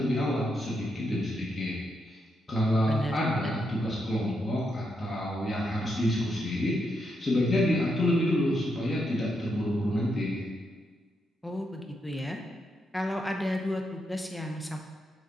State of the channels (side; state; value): both; normal; correlation 0.81